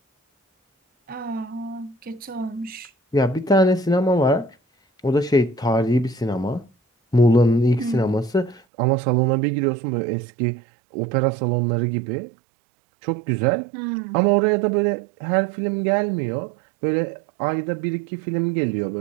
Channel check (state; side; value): drops out; left; at 8.6 s